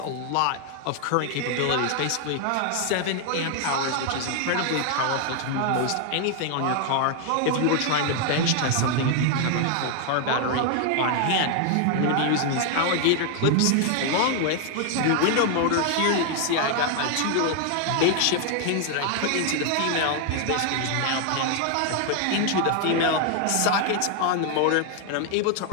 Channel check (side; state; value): both; different; correlation 0.00